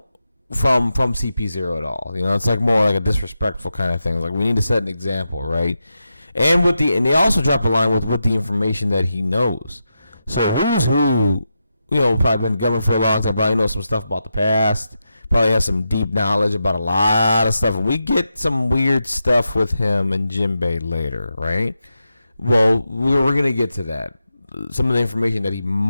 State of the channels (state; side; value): inverted; both; correlation -0.88